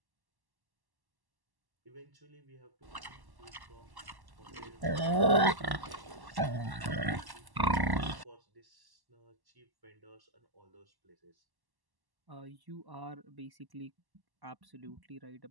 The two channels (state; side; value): late; left; 1.1 ms